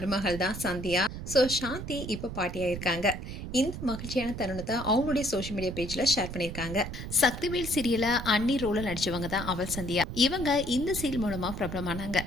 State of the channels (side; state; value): right; noise; rumble, 8 dB below the sound